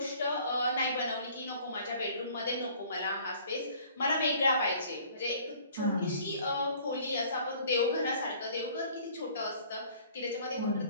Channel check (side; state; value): both; inverted; correlation -0.54